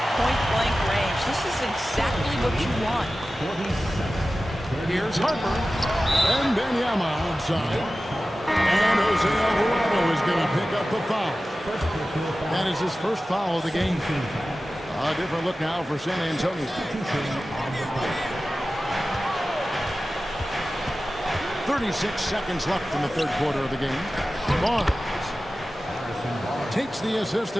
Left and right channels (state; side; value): normal; both; correlation 0.95